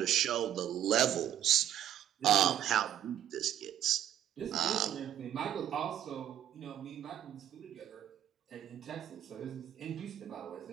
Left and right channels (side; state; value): left; quieter; 11.1 dB